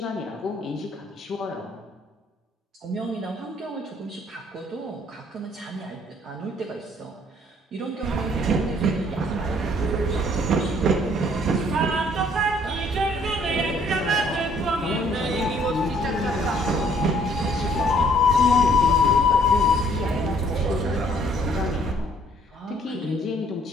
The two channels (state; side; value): normal; both; correlation 0.61